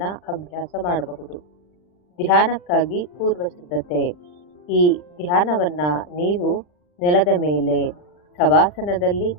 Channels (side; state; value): right; late; 40 ms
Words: ಅಭ್ಯಾಸ ಮಾಡಬಹುದು. ಧ್ಯಾನಕ್ಕಾಗಿ ಪೂರ್ವ ಸಿದ್ಧತೆ. ಈ ಧ್ಯಾನವನ್ನು ನೀವು ನೆಲದ ಮೇಲೆ ಶವಾಸನದಲ್ಲಿ